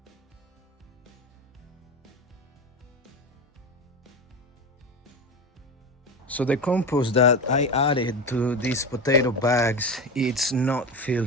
So the compost that I added to these potato bags, it's not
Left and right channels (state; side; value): normal; both; correlation 0.21